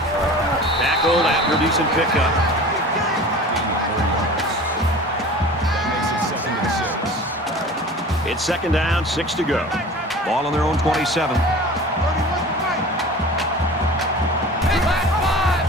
Tackled after a decent pickup. It's 2nd down, 6 to go. Ball on their own 27. 31's the mic.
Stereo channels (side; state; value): both; normal; correlation 0.39